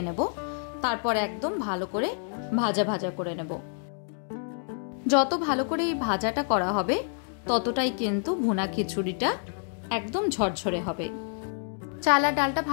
নেব। তারপর একদম ভালো করে ভাজা ভাজা করে নেব। যত ভালো করে এই ভাজাটা করা হবে ততটাই কিন্তু ভুনা খিচুড়িটা একদম ঝরঝরে হবে। চাল আর ডালটা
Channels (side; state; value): right; silent; 59 dB below the other